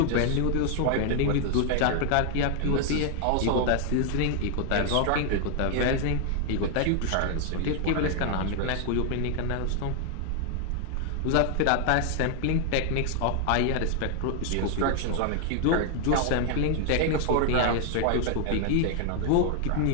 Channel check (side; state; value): both; different; correlation 0.00